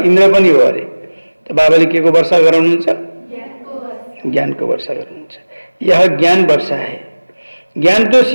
पनि हो अरे। त बाबाले के को वर्षा गराउनुहुन्छ? ज्ञान को वर्षा गराउनुहुन्छ। यह ज्ञान वर्षा है। ज्ञान तो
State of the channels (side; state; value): both; inverted; correlation -1.00